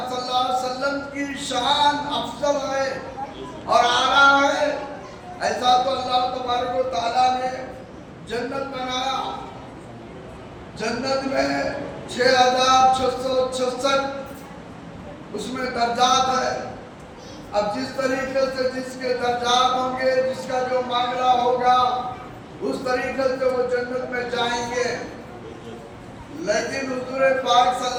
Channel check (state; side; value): identical; both; correlation 1.00